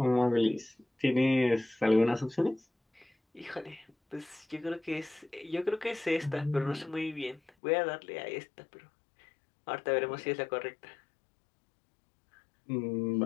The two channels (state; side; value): drops out; right; at 7.5 s